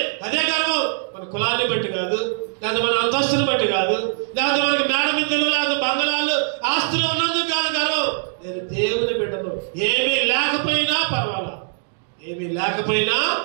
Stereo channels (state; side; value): silent; left; digital silence